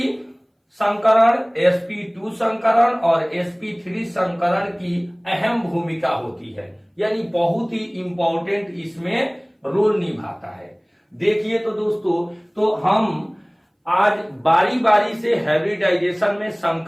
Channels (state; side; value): identical; both; correlation 1.00